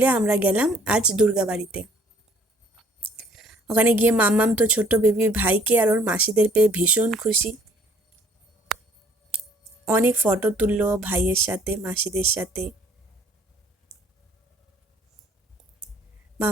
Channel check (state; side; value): normal; both; correlation 0.58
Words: আমরা গেলাম আজ দুর্গাবাড়িতে। ওখানে গিয়ে মাম্মাম তো ছোট্ট বেবি ভাইকে আর ওর মাসিদের পেয়ে ভীষণ খুশি। অনেক ফটো তুললো ভাইয়ের সাথে, মাসিদের সাথে।